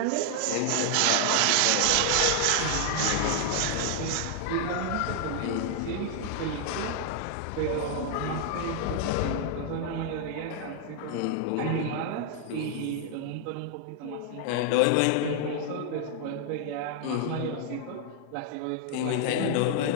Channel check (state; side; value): different; both; correlation 0.00